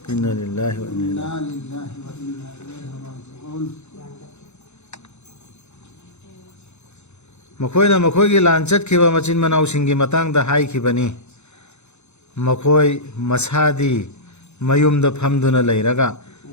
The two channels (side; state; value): right; late; 0.82 ms